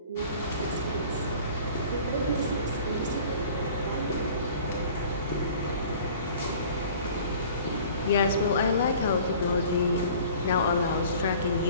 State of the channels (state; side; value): inverted; both; correlation -0.47